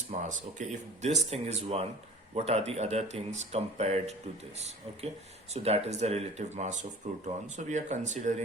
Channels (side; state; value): both; normal; correlation 0.42